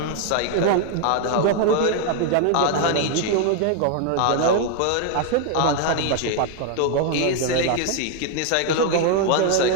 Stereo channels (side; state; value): both; different; correlation 0.00